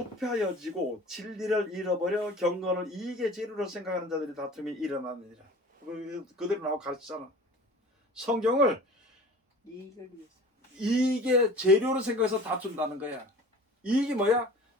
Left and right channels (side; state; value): both; normal; correlation 0.42